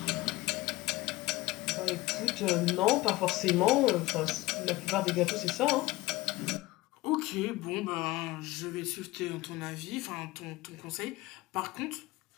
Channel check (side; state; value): right; quieter; 19.4 dB